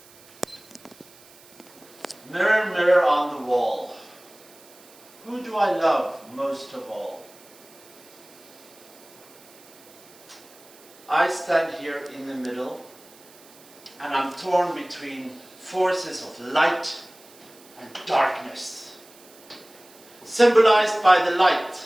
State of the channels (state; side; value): noise; right; hiss, 24 dB below the sound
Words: Mirror, mirror on the wall, who do I love most of all? I stand here in the middle, and I'm torn between forces of light and darkness. Symbolized by the